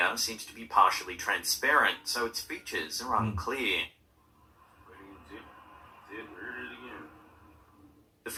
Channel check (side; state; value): both; identical; correlation 1.00